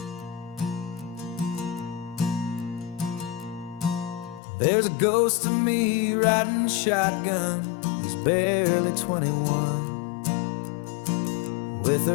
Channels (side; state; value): right; drops out; at 4.4 s